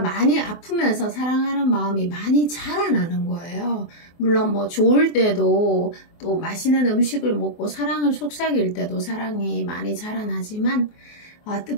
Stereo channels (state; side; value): late; right; 24 ms